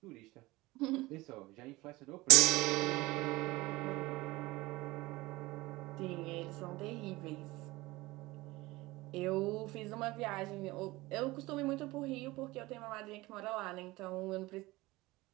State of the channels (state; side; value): quieter; left; 20.4 dB